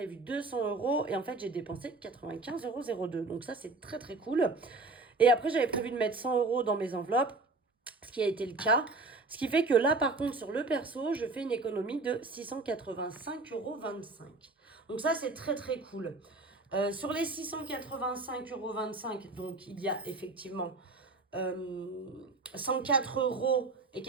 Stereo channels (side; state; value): left; quieter; 3.4 dB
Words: 200 € et en fait, j'ai dépensé 95,02 €. Donc, ça, c'est très, très cool. Et après, j'avais prévu de mettre 100 € dans mes enveloppes, ce qui a été le cas. Ce qui fait que là, par contre, sur le perso, je fais une économie de 685,25 €. Donc ça, c'est très, très cool. Sur les 685,25 €, donc il y a effectivement 104,98